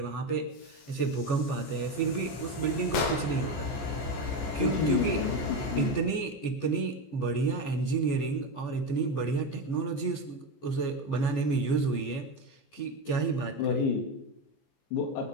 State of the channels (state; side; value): late; right; 14 ms